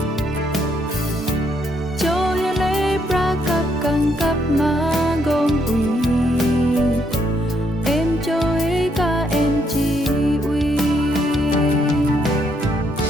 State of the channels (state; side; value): normal; both; correlation 0.73